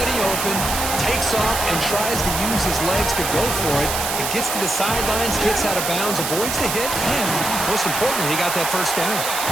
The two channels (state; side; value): noise; right; hiss, 2 dB below the sound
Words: open, takes off and tries to use his legs to go for it. It gets to the sidelines, gets out of bounds, avoids the hit, and most importantly, he got that first down.